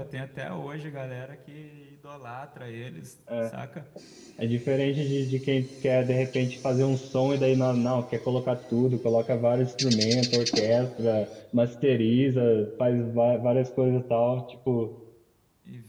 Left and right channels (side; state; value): both; identical; correlation 1.00